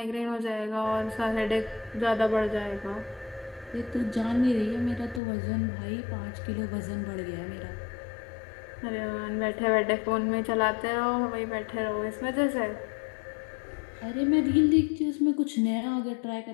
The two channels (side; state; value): right; drops out; at 5.2 s